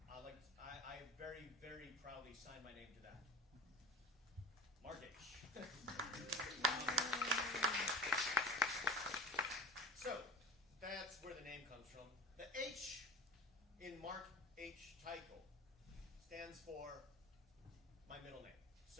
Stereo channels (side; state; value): both; normal; correlation 0.36